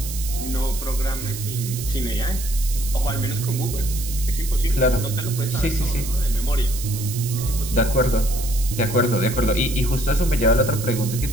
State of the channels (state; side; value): noise; right; hiss, 9 dB below the sound